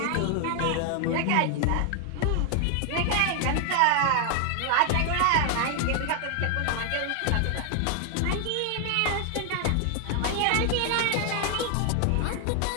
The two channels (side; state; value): both; different; correlation 0.00